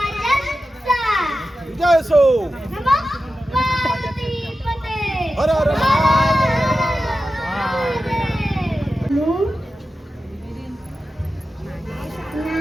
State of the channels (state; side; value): normal; both; correlation 0.92